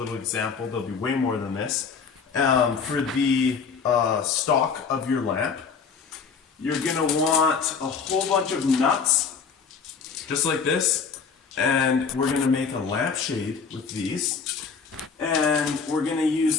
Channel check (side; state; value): right; quieter; 5.7 dB